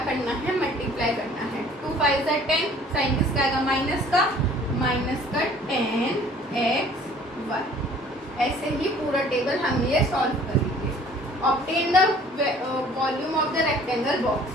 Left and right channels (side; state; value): both; normal; correlation 0.53